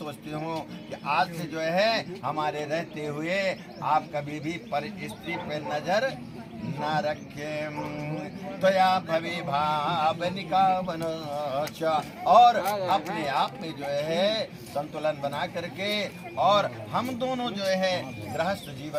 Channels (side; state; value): both; identical; correlation 1.00